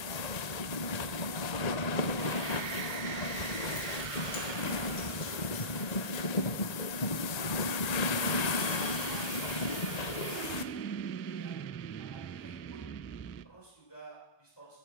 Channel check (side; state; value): right; late; 1.8 ms